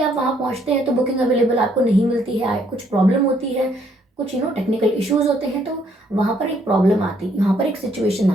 आप वहाँ पहुँचते हैं तो बुकिंग अवेलेबल आपको नहीं मिलती है, कुछ प्रॉब्लम होती है, कुछ टेक्निकल इश्यूज होते हैं, तो वहाँ पर एक प्रॉब्लम आती है, वहाँ पर एक सिचुएशन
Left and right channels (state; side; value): normal; both; correlation 0.68